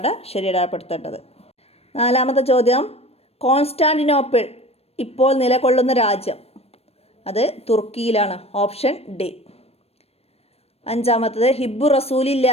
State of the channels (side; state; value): right; late; 0.29 ms